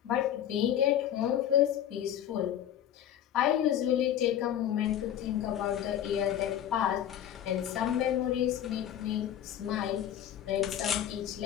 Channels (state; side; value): quieter; right; 10.7 dB